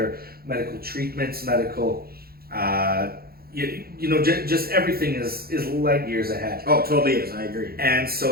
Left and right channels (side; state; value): left; late; 0.44 ms